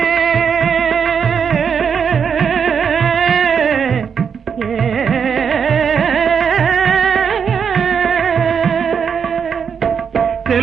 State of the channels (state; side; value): quieter; left; 6.8 dB